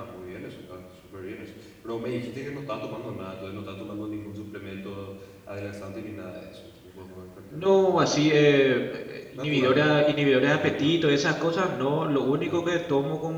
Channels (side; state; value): both; identical; correlation 1.00